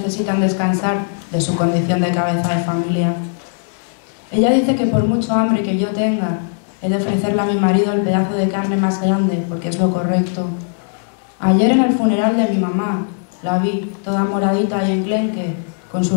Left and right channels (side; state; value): right; silent; 67 dB below the other